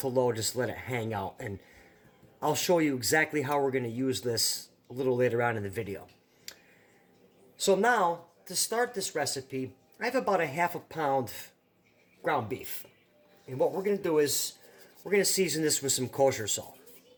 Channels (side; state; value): both; identical; correlation 1.00